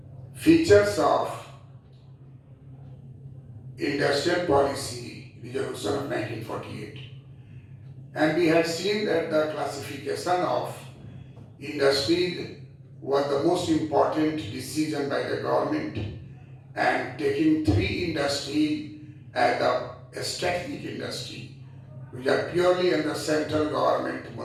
features of industrial policy resolution of 1948, and we had seen that the classification of industry was the most important decision by the government, and taking three industry as the strategic industry, which are purely under central government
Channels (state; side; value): identical; both; correlation 1.00